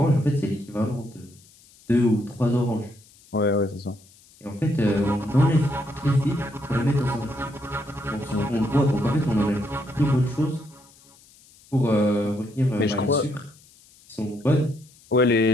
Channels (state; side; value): noise; left; hiss, 27 dB below the sound